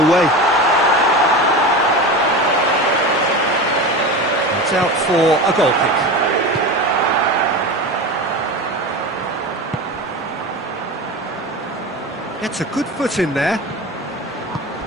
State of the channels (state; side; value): normal; both; correlation 0.27